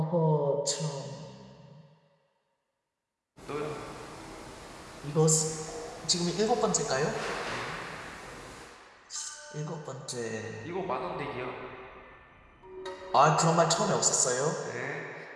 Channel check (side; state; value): both; identical; correlation 1.00